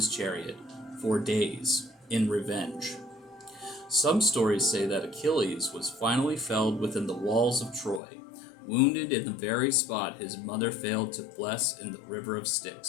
chariot for days in revenge. Some stories say that Achilles was finally felled within the walls of Troy, wounded in the very spot his mother failed to bless in the river of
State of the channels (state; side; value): drops out; right; at 8.0 s